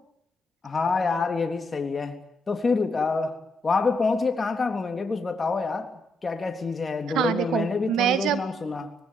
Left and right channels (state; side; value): normal; both; correlation 0.78